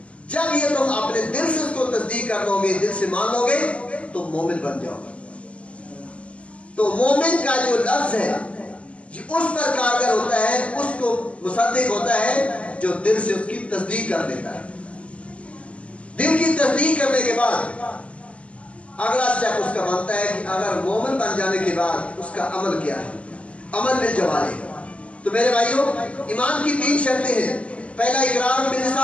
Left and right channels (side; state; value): right; late; 0.062 ms